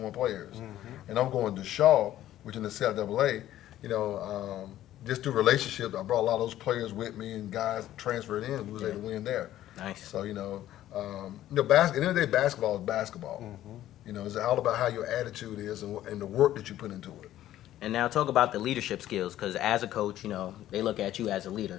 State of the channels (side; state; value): right; quieter; 13.2 dB